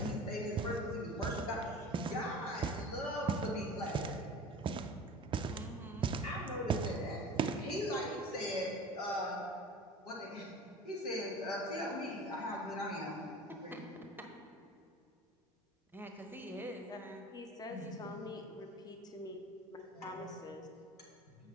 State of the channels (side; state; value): both; normal; correlation 0.38